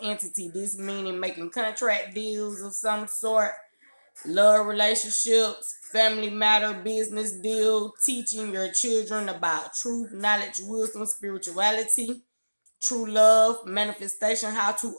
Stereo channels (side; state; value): both; inverted; correlation -1.00